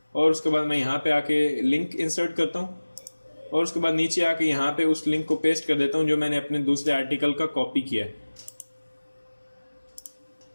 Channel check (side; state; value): both; inverted; correlation -1.00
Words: और उसके बाद मैं यहाँ पे आके लिंक इंसर्ट करता हूँ और उसके बाद नीचे आके यहाँ पे उस लिंक को पेस्ट कर देता हूँ जो मैंने अपने दूसरे आर्टिकल का कॉपी किया है।